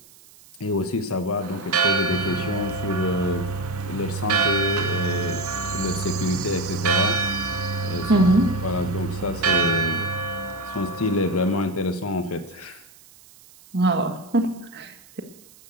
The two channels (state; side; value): noise; right; hiss, 25 dB below the sound